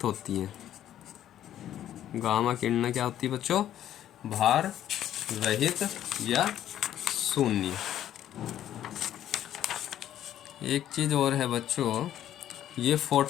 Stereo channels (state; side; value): quieter; right; 11.5 dB